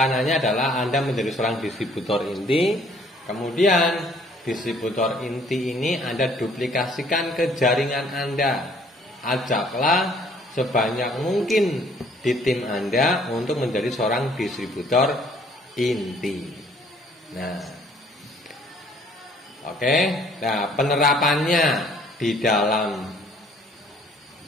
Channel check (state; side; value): normal; both; correlation 0.59